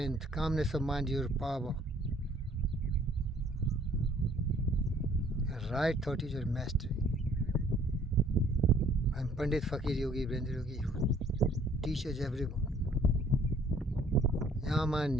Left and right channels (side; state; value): both; normal; correlation 0.59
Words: Calmness of mind is your power. And right thought is your mastery. I'm Pandit Fakir Yogi Brendra Yogi who teaches everyone.